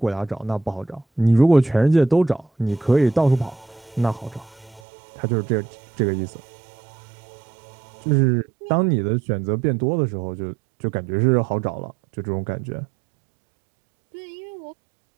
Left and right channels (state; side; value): drops out; left; at 4.8 s